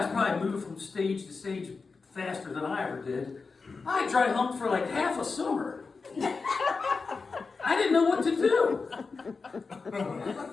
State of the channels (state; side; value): quieter; right; 4.5 dB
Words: probably moved from stage to stage faster than I ever did. I dry humped for like half a summer. I didn't know what to do.